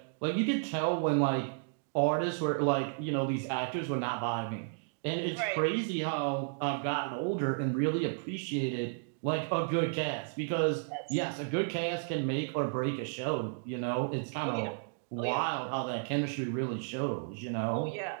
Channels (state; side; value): silent; left; digital silence